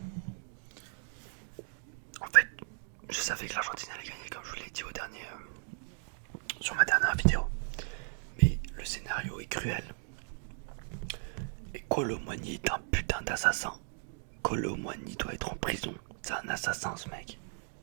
En fait, je savais que l'Argentine allait gagner, comme je vous l'ai dit sur ma dernière vidéo. Mais le scénario est cruel. Et Kolo Muani est un putain d'assassin. Kolo Muani doit être en prison. C'est un assassin, ce mec.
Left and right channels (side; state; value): left; silent; 54 dB below the other